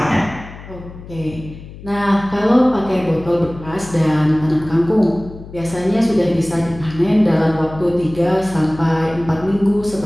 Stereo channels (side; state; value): left; noise; hum, 16 dB below the sound